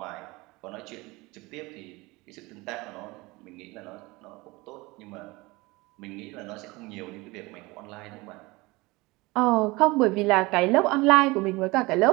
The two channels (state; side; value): quieter; left; 22.9 dB